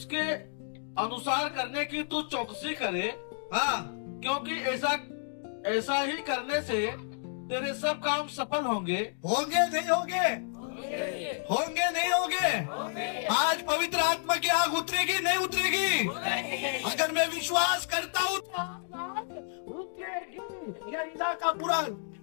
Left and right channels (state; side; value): silent; right; digital silence